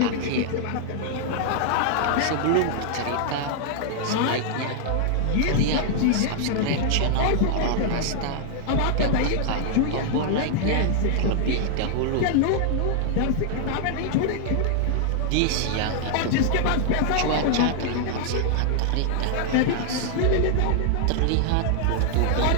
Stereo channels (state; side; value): different; both; correlation -0.01